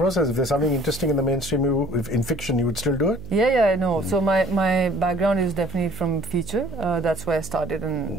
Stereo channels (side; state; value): right; noise; hum, 13 dB below the sound